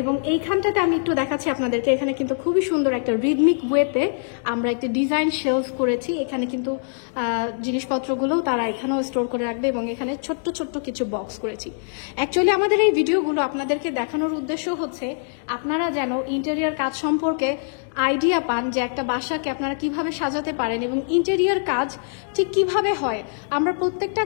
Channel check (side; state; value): right; silent; digital silence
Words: এবং এইখানটাতে আমি একটু দেখাচ্ছি আপনাদেরকে, এখানে কিন্তু খুবই সুন্দর একটা রিদমিক ওয়েতে আমরা একটা ডিজাইন শেলফ করেছি। এখানে কিন্তু জিনিসপত্রগুলোও তারা এখানেও স্টোর করে রাখবে, এবং এখানে ছোট্ট ছোট্ট কিছু বক্স করেছি। অ্যাকচুয়ালি আমাদের এই ভিডিওগুলো আপনাদেরকে দেখানোর উদ্দেশ্য হচ্ছে আপনারা যেন ইন্টেরিয়ার কাজ সম্পর্কে আইডিয়া পান, যে একটা বাসাকে আপনারা কিভাবে সাজাতে পারেন এবং ইন্টেরিয়ার কাজ ঠিক কিভাবে হয়। আমরা প্রত্যেকটা